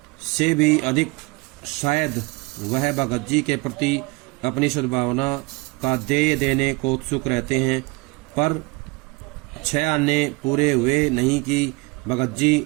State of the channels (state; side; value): quieter; left; 26.2 dB